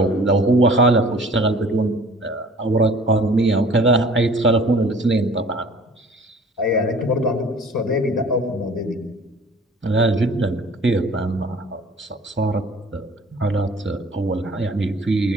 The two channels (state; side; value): normal; both; correlation 0.48